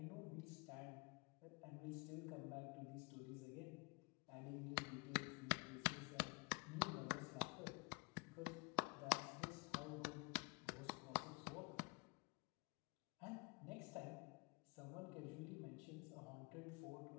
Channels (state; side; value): quieter; right; 31.2 dB